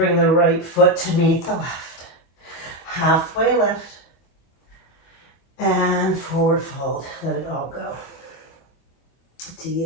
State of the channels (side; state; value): right; late; 24 ms